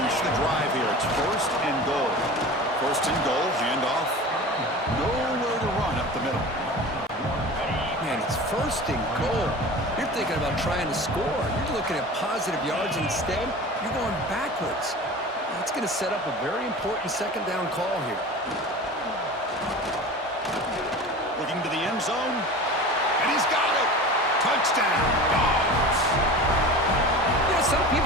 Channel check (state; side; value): normal; both; correlation 0.35